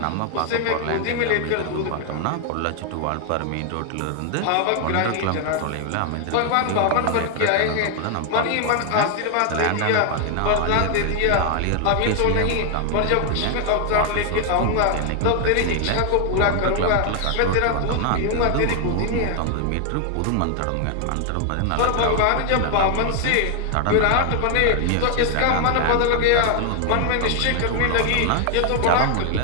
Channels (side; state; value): both; different; correlation 0.00